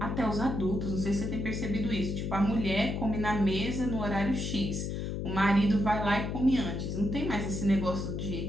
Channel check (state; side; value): noise; left; hum, 3 dB below the sound